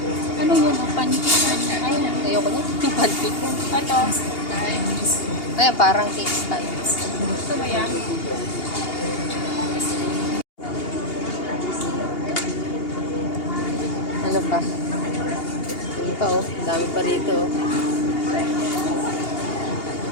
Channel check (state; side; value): late; right; 2.8 ms